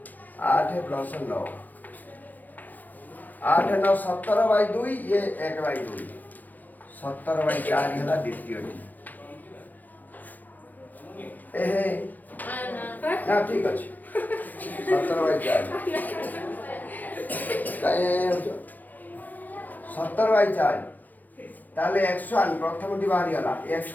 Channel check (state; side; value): late; right; 0.083 ms